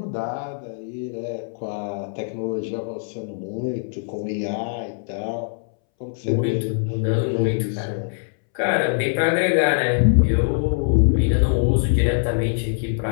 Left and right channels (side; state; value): right; silent; 64 dB below the other